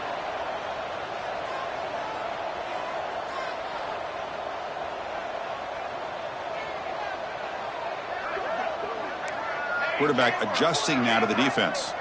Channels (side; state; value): both; identical; correlation 1.00